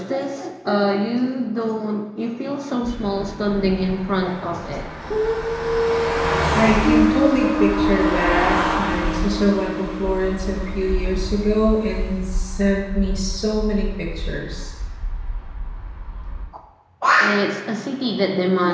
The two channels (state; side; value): identical; both; correlation 1.00